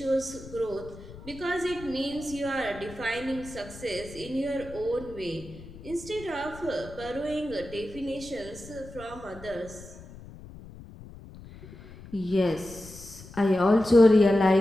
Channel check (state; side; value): noise; left; rumble, 17 dB below the sound